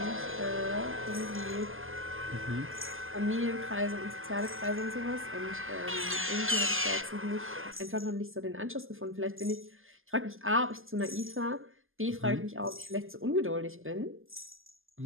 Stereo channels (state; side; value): late; left; 0.59 ms